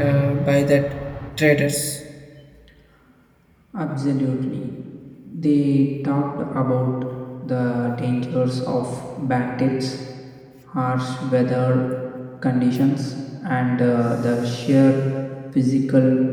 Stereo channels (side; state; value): both; identical; correlation 1.00